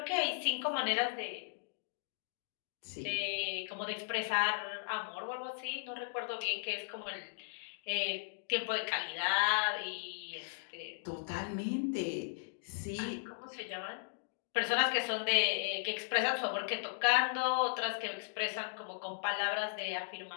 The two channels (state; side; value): silent; right; digital silence